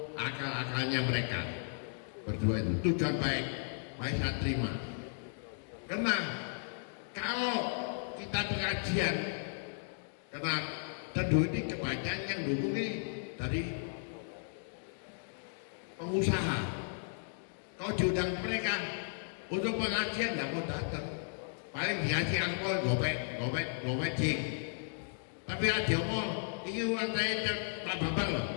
akal-akalnya mereka berdua itu sudah baik, saya terima. Karena kalau kita pengajian, karena tentu ini kebanyakan yang dukung ini dari pengusaha. Kalau diundang mereka untuk pengajian tidak mau datang, paling dikasih angpau gopek jing. Tapi ada mau ini uang saya nggak apa-apa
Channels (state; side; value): silent; right; digital silence